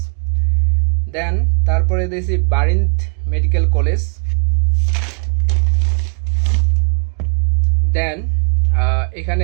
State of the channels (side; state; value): left; quieter; 39.0 dB